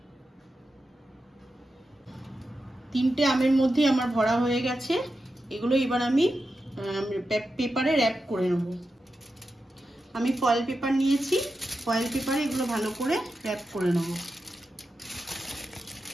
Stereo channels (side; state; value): both; normal; correlation 0.90